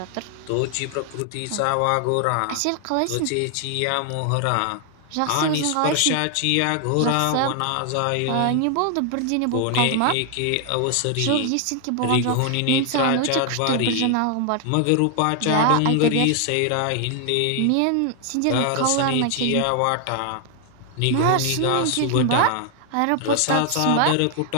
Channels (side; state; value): both; different; correlation 0.00